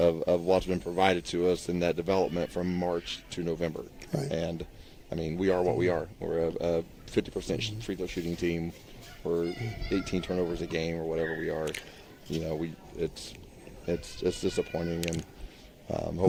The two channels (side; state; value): both; identical; correlation 1.00